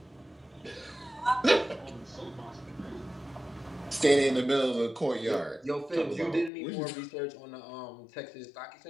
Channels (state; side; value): drops out; right; at 6.5 s